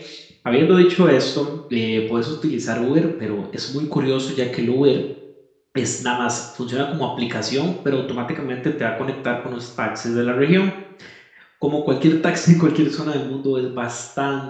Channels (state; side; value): identical; both; correlation 1.00